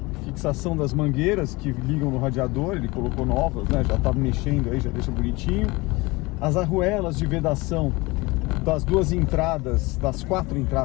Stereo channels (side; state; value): right; quieter; 23.2 dB